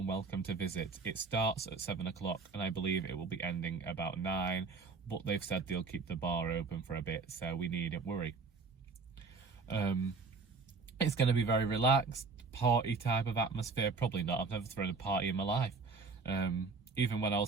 welcome to visit. It starts at 7 o'clock and I believe it will be ending about 9, but they've said they'll keep the bar open for a bit, so we needn't worry. It's going to be very relaxed, party type of atmosphere. Probably not, I've never thrown a party in my life. Even when I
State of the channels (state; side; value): quieter; left; 4.4 dB